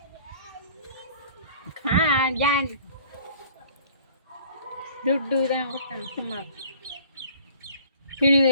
ஜான் ದುಡ್ಡು தான் கொடுத்தாங்க. சும்மா துணி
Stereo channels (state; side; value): inverted; both; correlation -0.51